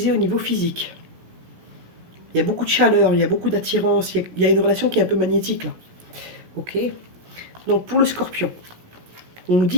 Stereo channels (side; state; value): left; late; 17 ms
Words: au niveau physique. Il y a beaucoup de chaleur, il y a beaucoup d'attirance, il y a une relation qui est un peu magnétique là. Ok. Donc pour le scorpion, on nous dit